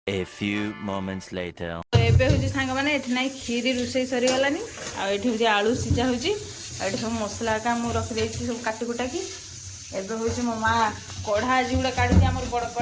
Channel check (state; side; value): identical; both; correlation 1.00